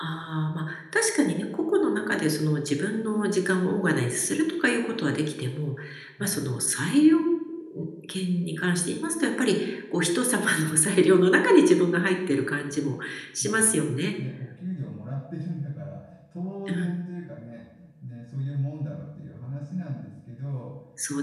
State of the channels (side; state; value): both; identical; correlation 1.00